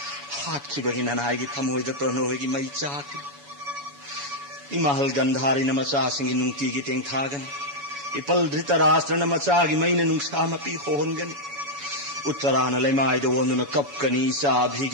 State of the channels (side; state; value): left; late; 7.1 ms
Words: हातखिबगी ननाईगी थमोइद प्रणोइगी मई चाकि इमहल गंधारी न मचा सिंगी नुंगती की तेंग थागन इपल धृतराष्ट्र न मचा की मईन नुंगसा मपी होनगन उत्तरान लेमाई दो न कपकनी सा भी